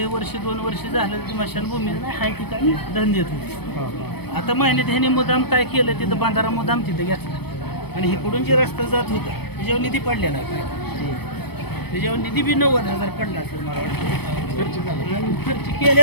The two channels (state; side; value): late; right; 0.97 ms